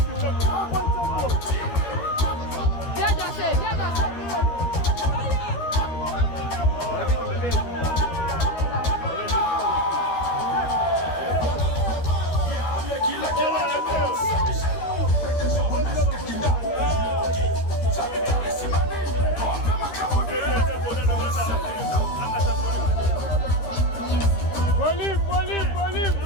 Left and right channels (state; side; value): late; right; 13 ms